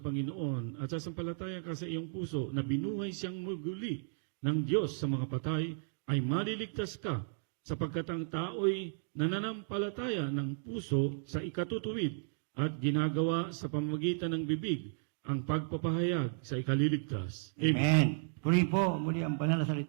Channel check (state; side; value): silent; left; digital silence